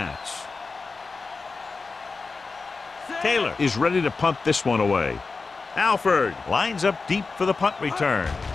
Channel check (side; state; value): right; quieter; 4.2 dB